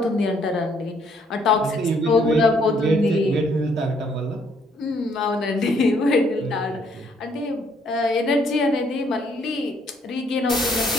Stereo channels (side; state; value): both; normal; correlation 0.67